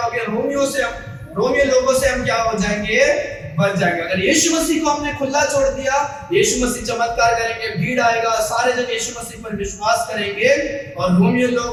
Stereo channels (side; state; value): both; identical; correlation 1.00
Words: गए? रोमियो लोगों से हम क्या हो जाएंगे? बच जाएंगे। अगर यीशु मसीह को हमने खुला छोड़ दिया, यीशु मसीह चमत्कार करेंगे, भीड़ आएगा, सारे जन यीशु मसीह पर विश्वास करेंगे, और रोमियो